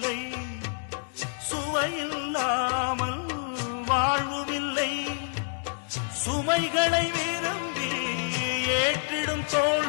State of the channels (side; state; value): right; silent; digital silence